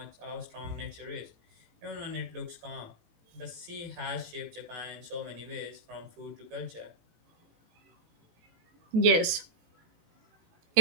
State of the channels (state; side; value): late; left; 18 ms